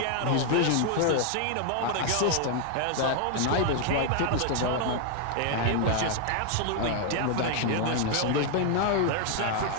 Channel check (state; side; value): different; both; correlation 0.00